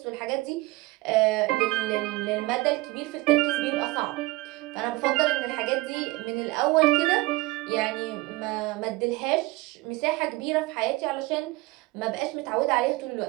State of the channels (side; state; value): left; quieter; 21.1 dB